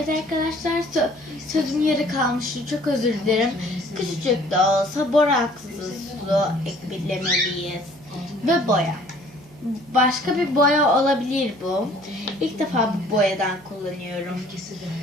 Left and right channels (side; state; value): right; noise; hum, 24 dB below the sound